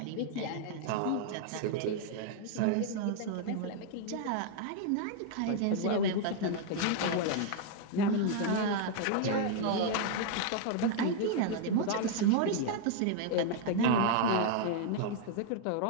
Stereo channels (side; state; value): both; different; correlation 0.00